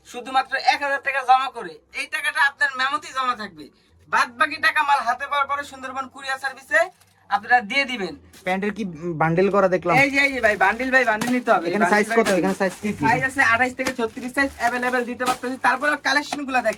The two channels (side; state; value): both; identical; correlation 1.00